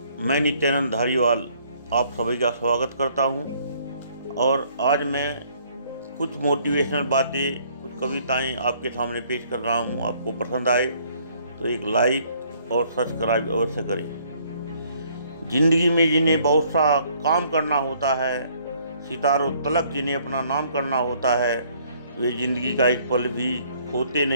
मैं नित्यानंद धारीवाल आप सभी का स्वागत करता हूं। और आज मैं कुछ मोटिवेशनल बातें, कुछ कविताएं आपके सामने पेश कर रहा हूं। आपको पसंद आए तो एक लाइक और सब्सक्राइब अवश्य करें। जिंदगी में जिन्हें बहुत सा काम करना होता है, सितारों तलक जिन्हें अपना नाम करना होता है, वे जिंदगी का एक पल भी खोते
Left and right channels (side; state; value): both; inverted; correlation -0.63